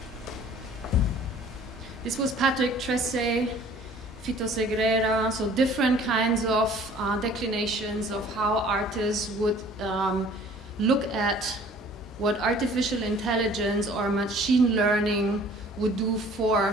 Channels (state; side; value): normal; both; correlation 0.52